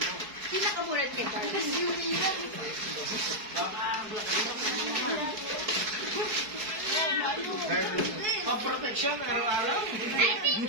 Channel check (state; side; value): late; left; 4.7 ms